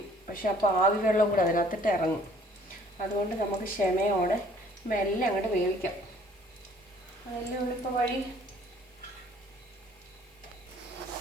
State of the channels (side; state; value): both; normal; correlation 0.57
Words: പക്ഷെ അപ്പോൾ ആവി വെള്ളം കൂടെ അതിനകത്തിട്ട് ഇറങ്ങും. അതുകൊണ്ട് നമുക്ക് ക്ഷമയോടെ മെല്ലെ അങ്ങോട്ട് വേവിക്കാം. അതല്ലേ ഉള്ളിപ്പോൾ വഴി.